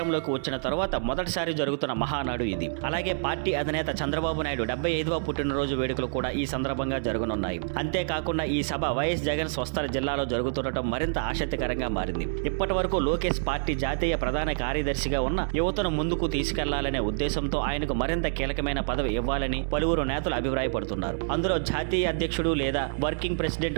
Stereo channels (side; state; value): left; silent; 60 dB below the other